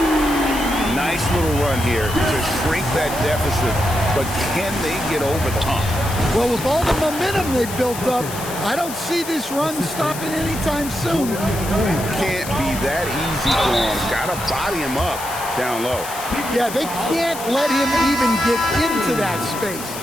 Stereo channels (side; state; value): left; noise; hiss, 10 dB below the sound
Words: Nice little run here to shrink that deficit, but can they get over the hump? Well, with all the momentum they've built up, I don't see this run stopping anytime soon. Can't be that easy for him. Got to body him up down low. Yeah, they can't let him even get into that space.